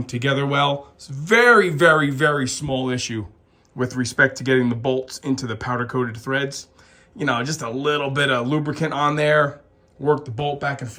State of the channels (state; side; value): identical; both; correlation 1.00